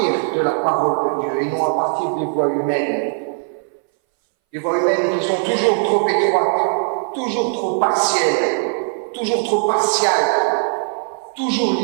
de la parole de Dieu et non à partir des voies humaines. Des voies humaines qui sont toujours trop étroites, toujours trop partielles, toujours trop partiales, toujours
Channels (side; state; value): left; silent; 63 dB below the other